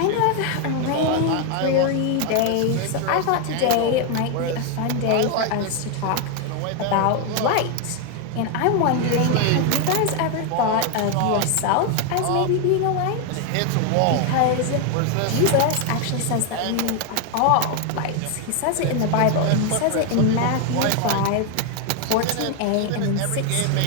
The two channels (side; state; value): both; different; correlation 0.01